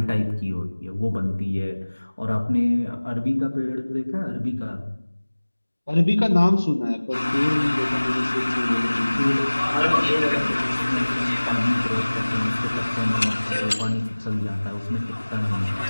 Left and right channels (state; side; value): inverted; both; correlation -1.00